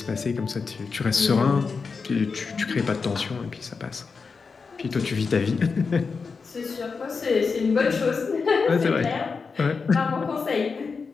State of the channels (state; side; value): quieter; right; 5.0 dB